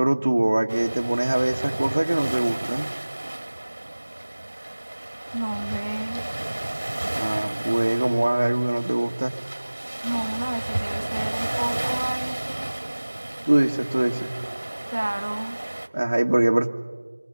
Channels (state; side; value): inverted; both; correlation -1.00